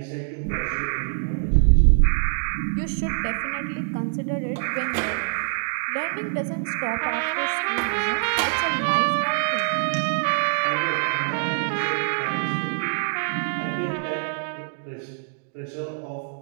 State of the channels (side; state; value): left; silent; digital silence